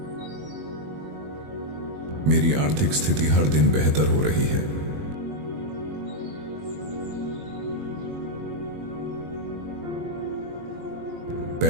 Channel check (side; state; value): left; late; 21 ms